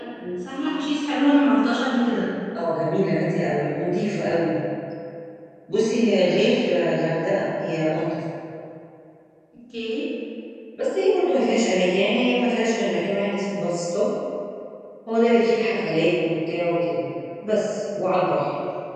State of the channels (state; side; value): identical; both; correlation 1.00